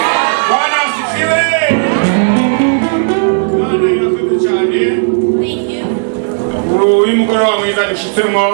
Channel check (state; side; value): silent; left; digital silence